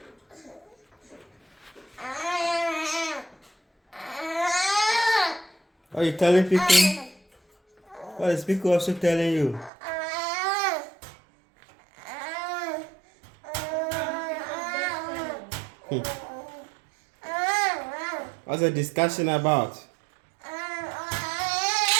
What are you telling Pico? What is Pico also telling you? What's the discussion about? I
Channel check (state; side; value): drops out; left; at 9.7 s